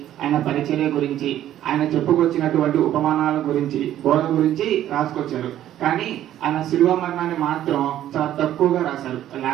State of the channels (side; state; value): left; quieter; 12.1 dB